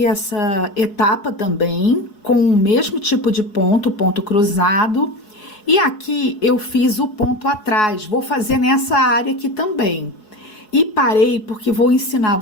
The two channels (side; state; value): right; late; 4.7 ms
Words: essa etapa também com o mesmo tipo de ponto, ponto cruzado. E aqui eu fiz o ponto atrás, vou fazer nessa área aqui também. E parei porque vou ensinar